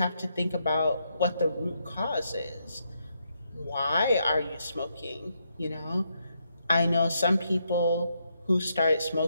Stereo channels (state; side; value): inverted; both; correlation -0.79